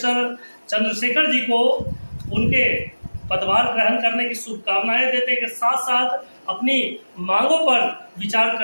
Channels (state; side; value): inverted; both; correlation -1.00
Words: चंद्रशेखर जी को उनके पदभार ग्रहण करने की शुभकामनाएं देते के साथ साथ अपनी मांगों पर विचार